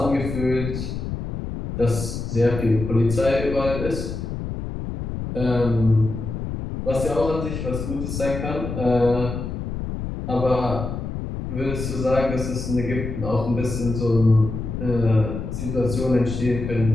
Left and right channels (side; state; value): left; noise; rumble, 5 dB below the sound